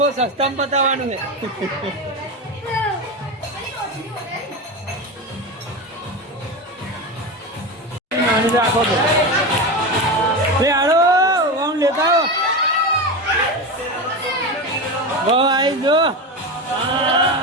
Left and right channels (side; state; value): both; normal; correlation 0.20